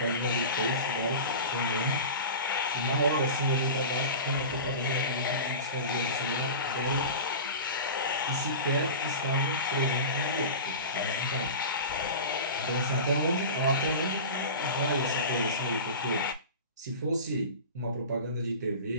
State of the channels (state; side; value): inverted; both; correlation -0.32